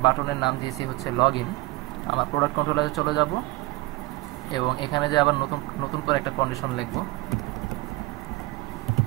বাটনের নাম দিয়েছি হচ্ছে লগ ইন, আমার প্রোডাক্ট কন্ট্রোলারে চলে যাব এবং এখানে যে আবার নতুন করে একটা কন্ডিশন লিখব,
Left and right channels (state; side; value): quieter; left; 20.9 dB